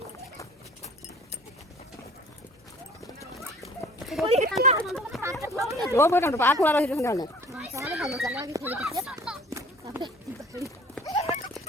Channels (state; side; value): normal; both; correlation 0.50